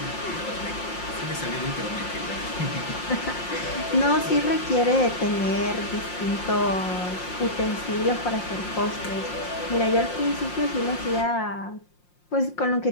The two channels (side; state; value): right; late; 5.6 ms